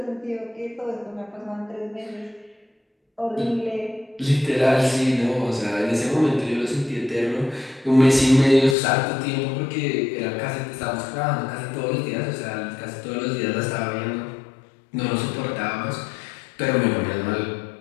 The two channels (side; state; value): right; drops out; at 8.8 s